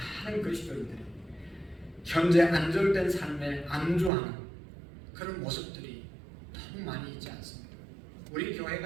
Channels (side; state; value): left; drops out; at 4.1 s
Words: 그리스도인들이 현재 안정된 삶에 안주하는 그런 모습들이 너무 많이 있지 않습니까? 우리